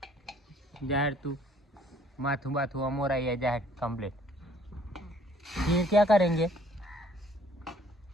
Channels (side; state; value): both; normal; correlation 0.59